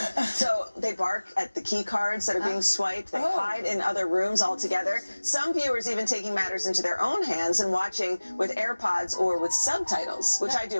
So they bark at the key cards that are being swiped. They hide in other rooms altogether. Some viewers even taking matters into their own hands and watching with AirPods or with subtitles, which I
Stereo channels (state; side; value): inverted; both; correlation -1.00